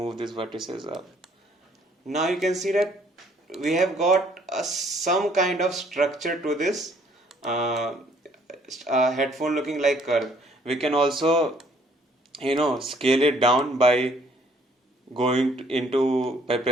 these vertices up. Now you can see that we have got some kind of structure to this headphone looking like curve. We can also scale it down by by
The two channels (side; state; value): both; normal; correlation 0.62